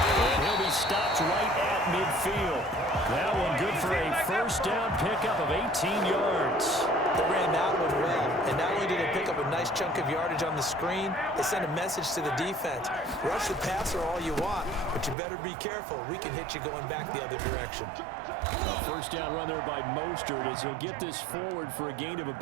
And he'll be stopped right at midfield. That one good for a 1st down pickup of 18 yards. They ran that one well, and not only did they pick up a nice chunk of yardage on the screen, they sent a message to the defense. Rush the passer all you want, but you better be careful. We can hit you going back the other direction. A 1st down run there by Mostert as he'll get this forward for a gain of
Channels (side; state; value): left; drops out; at 15.2 s